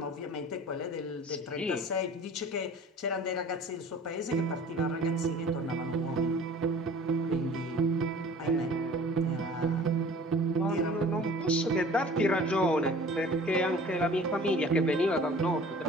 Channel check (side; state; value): both; normal; correlation 0.46